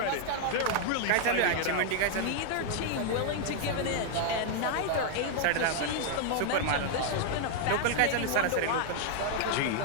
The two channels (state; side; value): different; both; correlation 0.00